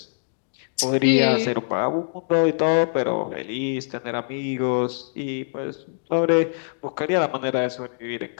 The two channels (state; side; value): silent; right; digital silence